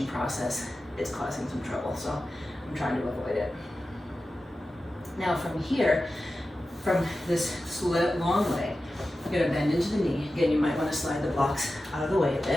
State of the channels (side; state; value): both; normal; correlation 0.93